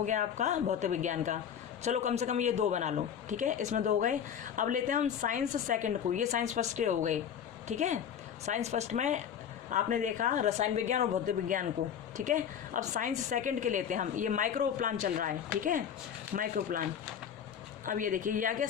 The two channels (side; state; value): right; quieter; 8.6 dB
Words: गया आपका भौतिक विज्ञान का। चलो कम से कम ये 2 बना लो, ठीक है। इसमें 2 हो गए। अब लेते हैं हम साइंस सेकंड को, ये साइंस फर्स्ट के हो गए, ठीक है। साइंस फर्स्ट में आपने देखा रसायन विज्ञान और भौतिक विज्ञान को, ठीक है। अब साइंस सेकंड के लेते हैं हम, ये माइक्रो प्लान चल रहा है, ठीक है, माइक्रो प्लान। अब ये देखिए, ये आ गया